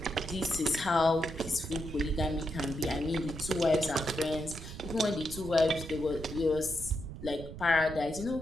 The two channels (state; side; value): noise; right; rumble, 11 dB below the sound